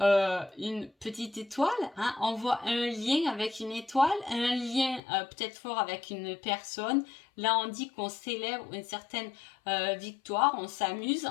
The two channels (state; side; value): drops out; right; at 5.0 s